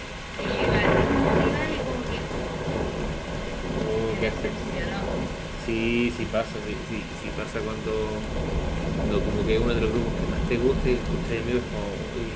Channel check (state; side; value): identical; both; correlation 1.00